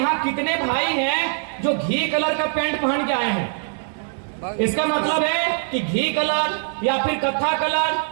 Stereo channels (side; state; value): left; silent; digital silence